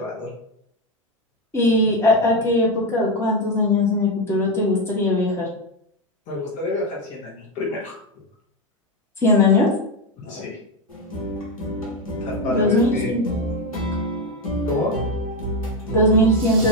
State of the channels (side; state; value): both; normal; correlation 0.10